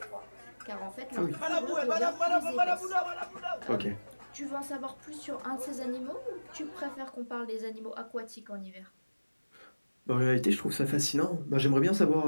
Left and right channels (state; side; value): inverted; both; correlation -1.00